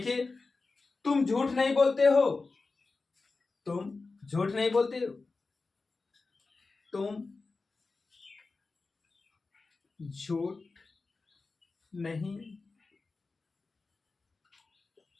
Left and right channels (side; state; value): right; quieter; 3.9 dB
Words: तुम झूठ नहीं बोलते हो। तुम झूठ नहीं बोलते हो। तुम झूठ नहीं